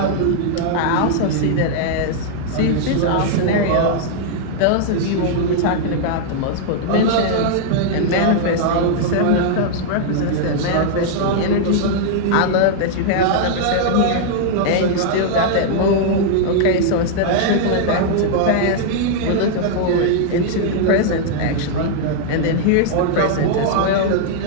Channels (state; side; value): different; both; correlation -0.01